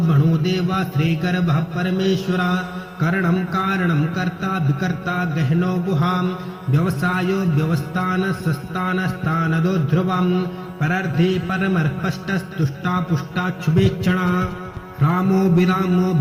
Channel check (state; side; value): identical; both; correlation 1.00